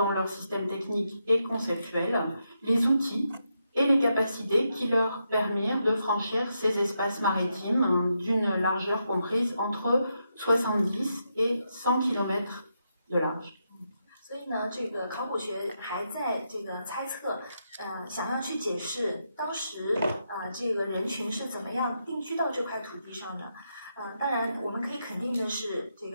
leur système technique et conceptuel les outils et les capacités qui leur permirent de franchir ces espaces maritimes d'une largeur comprise entre 70 et 100 km de large. 所以呢，这个考古学还在这个猜测，想要去解释当时这个人群是怎么样定居到这块土地上的。当然，我们可以肯定的是，这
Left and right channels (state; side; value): inverted; both; correlation -0.83